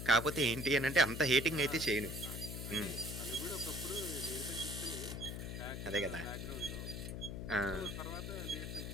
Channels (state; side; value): noise; left; hum, 6 dB below the sound